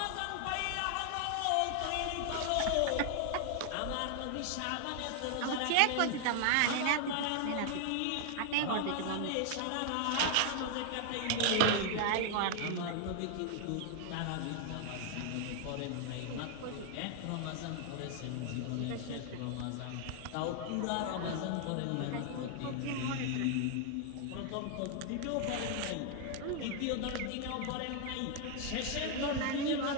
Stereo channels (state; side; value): different; both; correlation 0.00